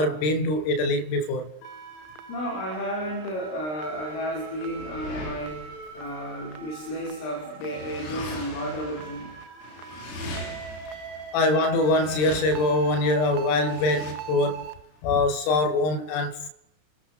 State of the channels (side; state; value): right; late; 32 ms